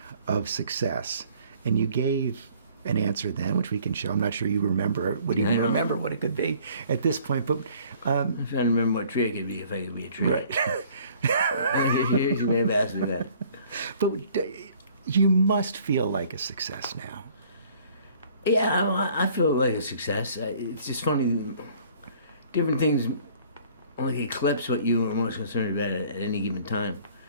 of success, and you gave an answer then, which we can show. I'm not sure you remember, would even remember what it could be at this point, but I'm trying to remember what tree I could be if I could be a tree. right. You may have asked me that. But you must feel like a success now. Yeah, I feel like a success. It's just funny, different things like eclipse what you are most concerned about at any given time.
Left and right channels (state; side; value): inverted; both; correlation -0.56